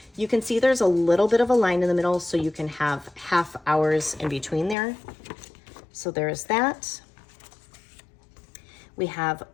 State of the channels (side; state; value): right; drops out; at 4.8 s